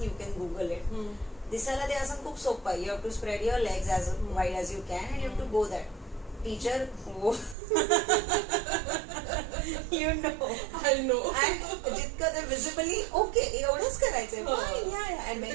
you can Google it. दिसायला ते आसन खूप सोपं आहे. You have to spread your legs as wide as you can and you have to go that. Teacher you know I know. जितकं ते विजिबली ओके एवढंच करायचंय.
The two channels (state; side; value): drops out; left; at 7.6 s